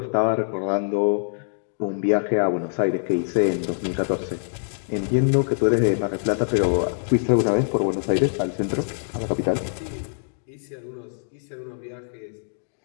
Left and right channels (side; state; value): right; silent; digital silence